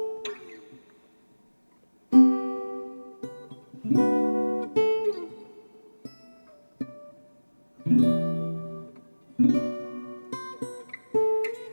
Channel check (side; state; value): both; inverted; correlation -1.00